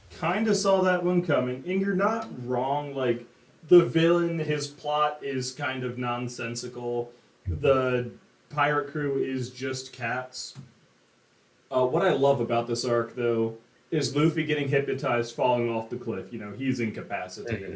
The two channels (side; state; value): both; identical; correlation 1.00